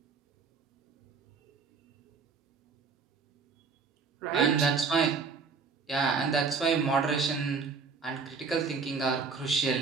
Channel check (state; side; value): quieter; left; 5.0 dB